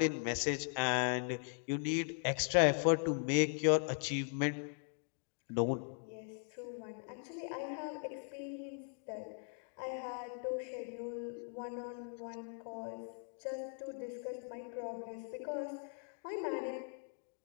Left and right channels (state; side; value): silent; right; 52 dB below the other